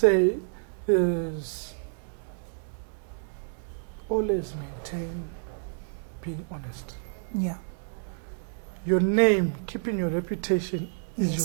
is always maintain being honest. Yeah. Your name, keeping your reputation is Yes.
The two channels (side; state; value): left; silent; 59 dB below the other